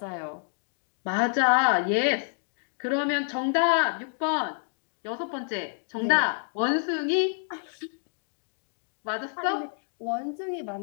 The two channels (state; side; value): silent; right; 59 dB below the other